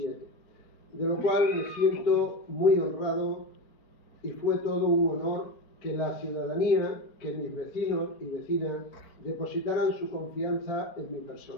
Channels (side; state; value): right; late; 4.4 ms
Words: de lo cual me siento muy honrado y fue todo un honor que la ciudadanía, que mis vecinos y vecinas depositaran su confianza en mi